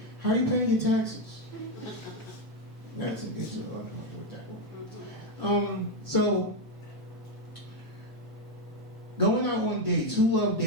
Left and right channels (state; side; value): normal; both; correlation 0.05